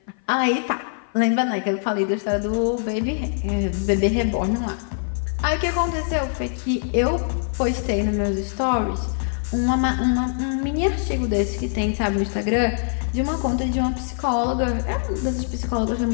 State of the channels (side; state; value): right; silent; 55 dB below the other